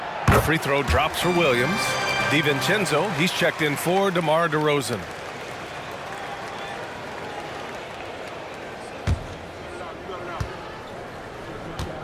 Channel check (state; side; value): identical; both; correlation 1.00